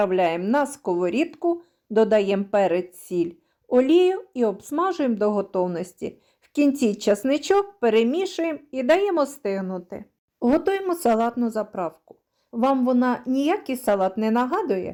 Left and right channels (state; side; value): identical; both; correlation 1.00